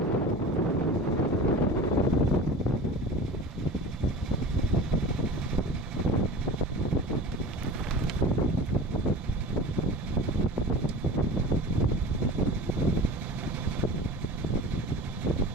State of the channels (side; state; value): both; normal; correlation 0.36